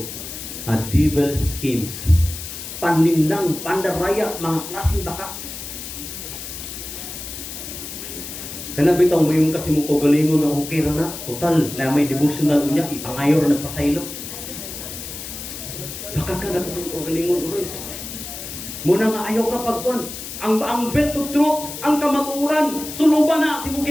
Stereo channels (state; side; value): noise; left; hiss, 9 dB below the sound